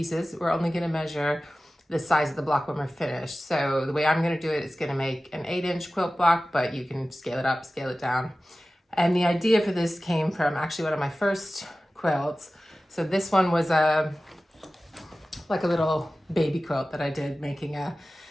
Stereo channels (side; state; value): both; normal; correlation 0.96